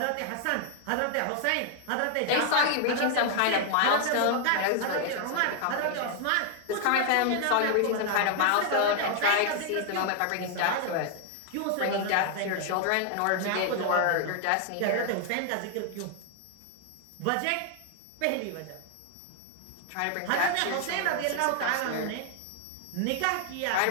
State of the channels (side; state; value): both; different; correlation 0.00